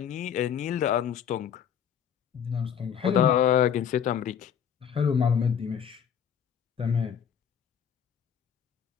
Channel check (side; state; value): right; quieter; 8.3 dB